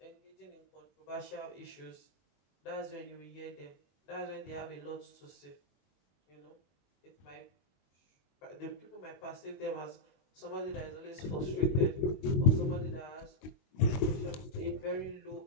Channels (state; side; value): late; right; 21 ms